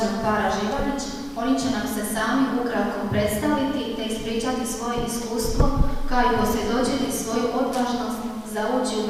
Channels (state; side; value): identical; both; correlation 1.00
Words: para Živanić. Oni će nam se sami ukratko predstaviti te ispričati svoje iskustvo, kao i posvjedočiti svoju odvažnost za ući u